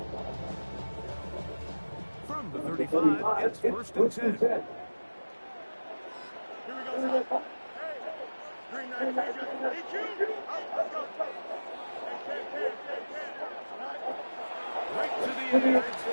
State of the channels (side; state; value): both; inverted; correlation -1.00